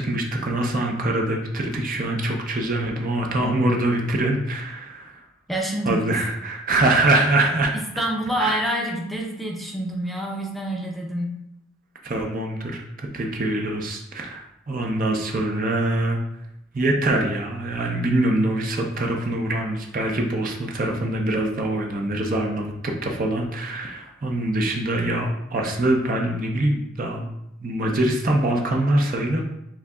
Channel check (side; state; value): both; normal; correlation 0.60